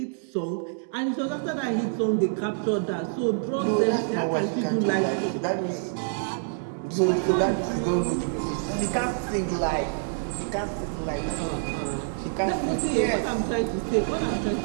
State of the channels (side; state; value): left; silent; digital silence